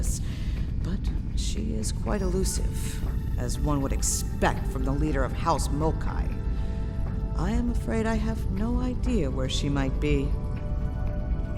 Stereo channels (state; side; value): identical; both; correlation 1.00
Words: But she is quite elusive, as one would expect from the leader of House Mokai. I am afraid I have no idea where she might be.